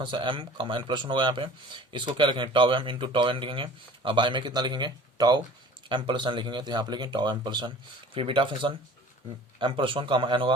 m comma n plus one होगा यहाँ पे। इसको क्या लिखेंगे, tau m into tau n लिखेंगे। अब बाई में कितना लिखेंगे, टाउ m प्लस n लिखेंगे, तो यहाँ पे लिखेंगे टाउ m प्लस n। फिर बीटा फंक्शन m+1 कामा n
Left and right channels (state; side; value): normal; both; correlation 0.45